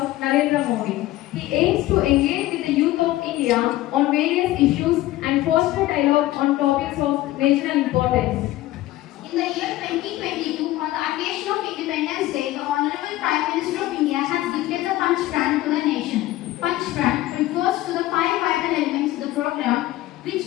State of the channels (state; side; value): quieter; right; 16.1 dB